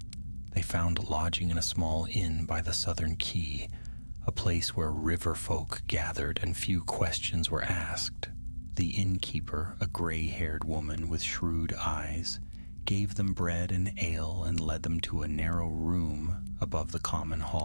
They found lodging in a small inn by the southern quay, a place where river folk gathered and few questions were asked. The innkeeper, a gray-haired woman with shrewd eyes, gave them bread and ale and led them to a narrow room above the common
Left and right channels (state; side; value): inverted; both; correlation -1.00